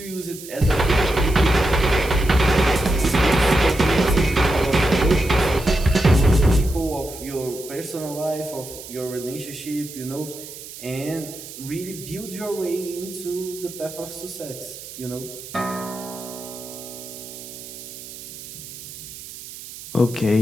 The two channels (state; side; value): noise; right; hiss, 13 dB below the sound